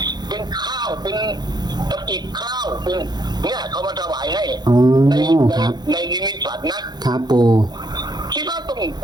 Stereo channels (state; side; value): late; left; 0.20 ms